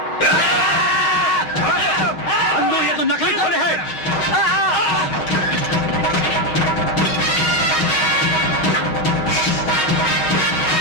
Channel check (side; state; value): right; late; 6.4 ms